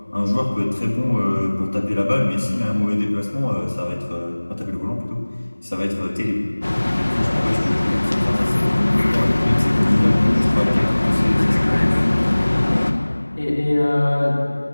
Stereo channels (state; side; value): inverted; both; correlation -1.00